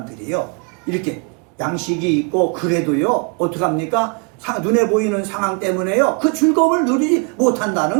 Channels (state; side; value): quieter; left; 32.2 dB